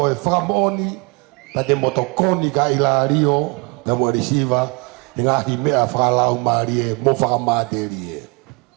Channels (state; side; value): quieter; left; 30.0 dB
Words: whakamooni ta te motokoni ka Ilario te mo resiva e ngahi mea whakalau maari e mo whakamāteri e.